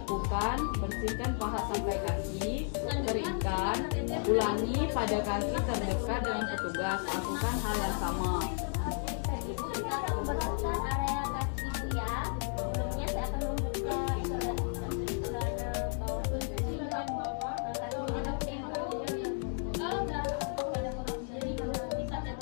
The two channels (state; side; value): silent; right; 56 dB below the other